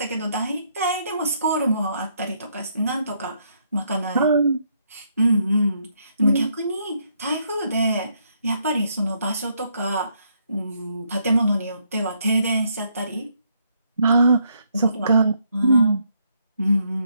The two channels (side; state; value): both; inverted; correlation -0.74